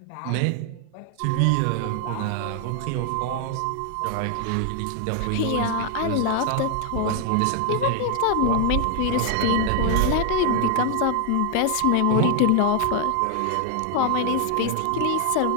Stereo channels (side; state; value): both; different; correlation 0.00